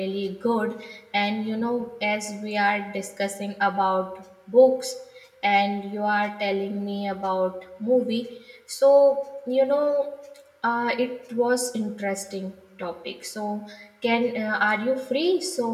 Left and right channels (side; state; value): both; identical; correlation 1.00